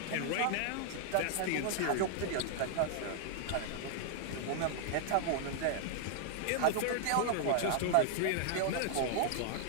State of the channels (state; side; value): different; both; correlation 0.00